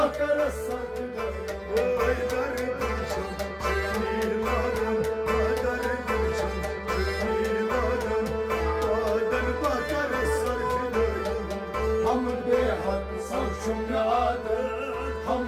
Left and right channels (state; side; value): identical; both; correlation 1.00